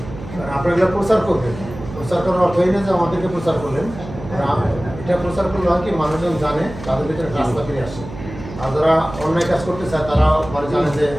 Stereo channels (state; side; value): noise; right; hum, 13 dB below the sound